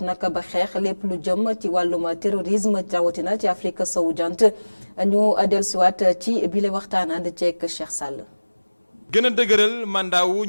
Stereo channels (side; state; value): both; inverted; correlation -1.00